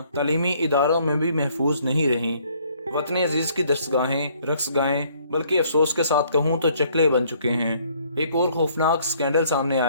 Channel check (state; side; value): inverted; both; correlation -0.63